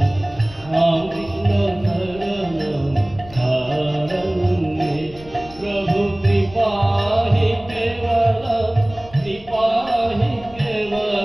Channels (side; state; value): left; noise; rumble, 20 dB below the sound